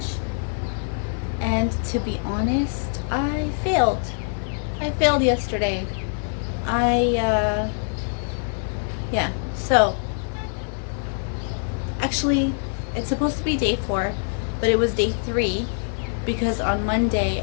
and to be honest, I failed. I failed yesterday. Yeah, so actually it's supposed to be day 4, but it was day 3 because on Monday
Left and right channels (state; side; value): silent; right; 58 dB below the other